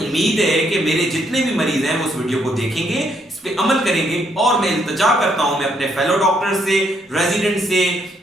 है कि मेरे जितने भी मरीज हैं वो उस वीडियो को देखेंगे, इस पे अमल करेंगे, और मैं इल्तिजा करता हूं मैं अपने फेलो डॉक्टर से, रेजिडेंट से,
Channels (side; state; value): both; normal; correlation 0.73